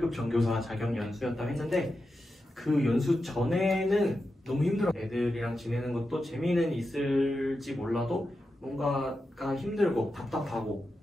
전교사 자격 연수였다고 했는데 그 연수 전에는 너무 힘들었어요. 애들이랑 지내는 것도 재미는 있을지 몰라도 뭔가가 힘들고 답답하고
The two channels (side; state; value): both; normal; correlation 0.89